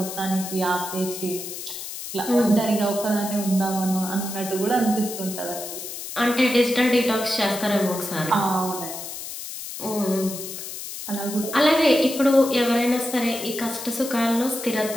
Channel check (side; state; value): left; noise; hiss, 9 dB below the sound